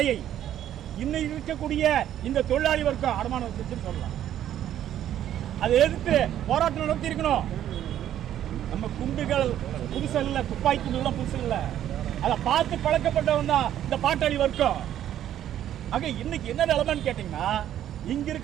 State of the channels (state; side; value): quieter; left; 11.3 dB